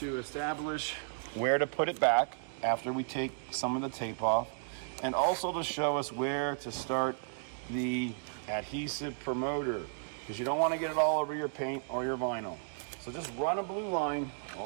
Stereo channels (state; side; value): silent; left; digital silence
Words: to establish where to put it back after we take some of the tape off, and also to show us where to start the adhesive promoter, because you don't want to get it all over your paint or your vinyl. So just run a blue line